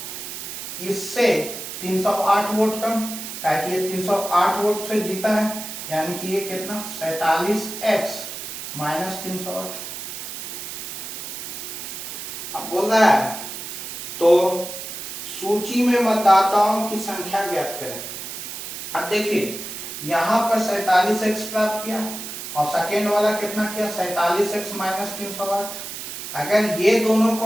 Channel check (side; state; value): right; noise; hiss, 8 dB below the sound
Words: इससे 308 वोट कम, कि ये 308 वोट से जीता है, यानी कि ये कितना? 47x minus 308। अब बोल रहा है तो सूची में मतदाताओं की संख्या ज्ञात करें। अब देखिए यहां पर 47x प्राप्त किया और सेकेंड वाला कितना किया? 47x minus 308। अगर ये दोनों